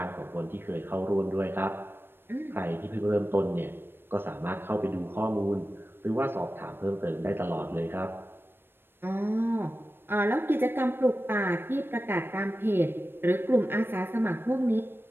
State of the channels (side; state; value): left; late; 0.10 ms